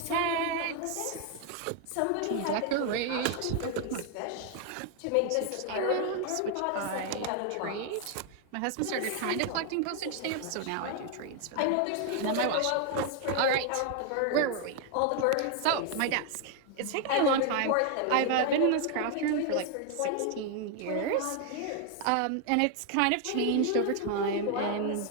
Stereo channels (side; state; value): both; different; correlation 0.00